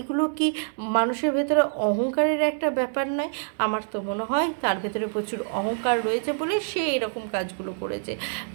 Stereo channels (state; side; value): silent; left; digital silence